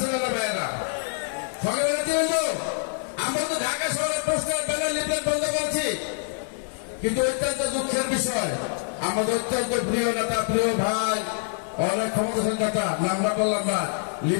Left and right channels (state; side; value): silent; right; digital silence